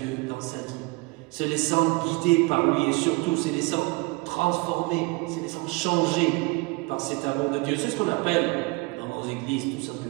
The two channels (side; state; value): left; quieter; 25.6 dB